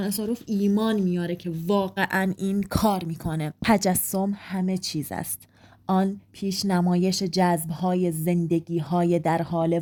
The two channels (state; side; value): identical; both; correlation 1.00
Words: آساروف ایمان میاره که واقعا این کار میکنه. تجسم همه چیز است، آن پیش نمایش جذب‌های زندگی‌های در حال